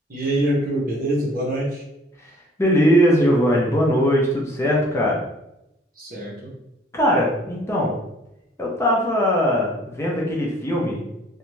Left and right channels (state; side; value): normal; both; correlation 0.56